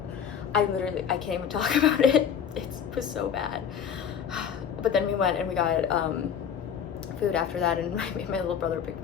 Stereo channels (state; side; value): quieter; right; 8.0 dB